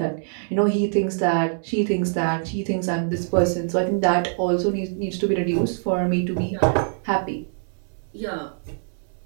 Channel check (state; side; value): silent; left; 63 dB below the other